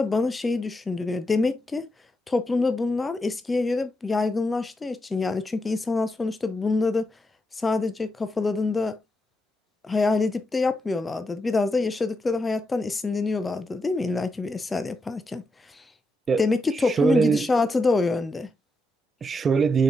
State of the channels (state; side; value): normal; both; correlation 0.85